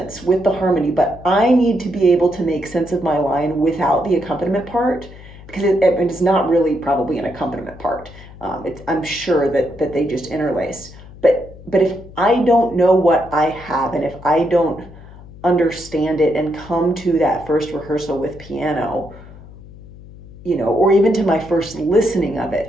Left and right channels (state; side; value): noise; left; hum, 18 dB below the sound